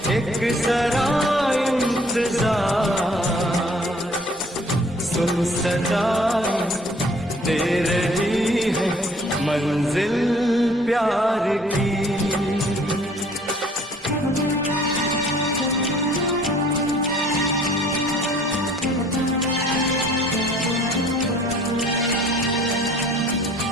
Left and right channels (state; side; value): normal; both; correlation 0.56